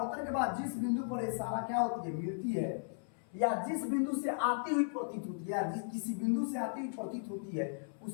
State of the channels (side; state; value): right; silent; 54 dB below the other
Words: के बाद जिस बिंदु पर सारा क्या होती है, मिलती है, या जिस बिंदु से आती हुई प्रतीत होती है, या किसी बिंदु से आती हुई प्रतीत होती है,